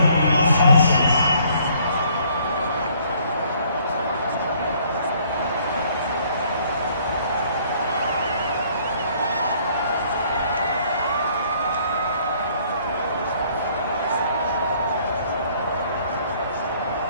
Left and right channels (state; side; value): inverted; both; correlation -0.62